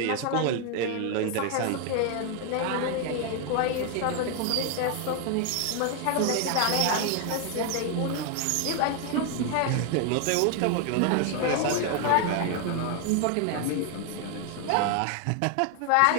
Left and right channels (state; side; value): different; both; correlation 0.01